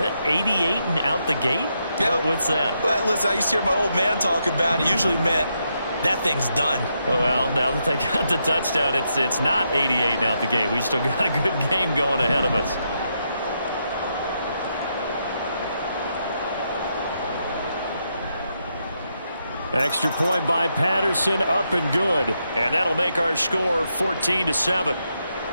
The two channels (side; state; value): both; inverted; correlation -0.81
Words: 88 and out the gate? Yeah. What's that? Well, listen, I used to hear my old man talk about it. Usually meant that thing's done. Well, now that they got the touchdown, it's not 88 and out the gate. We still got a good game going ahead of us. Extra point by Patterson, up and good. And that'll make our score 14-7.